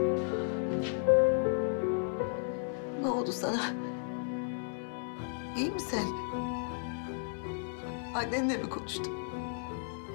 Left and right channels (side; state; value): right; silent; 55 dB below the other